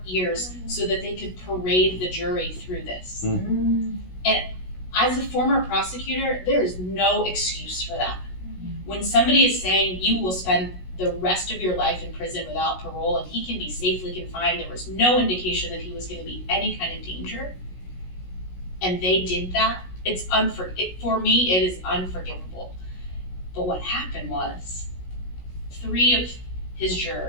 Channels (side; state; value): right; late; 16 ms